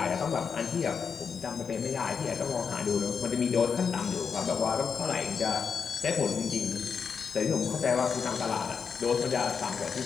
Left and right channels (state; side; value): quieter; right; 6.2 dB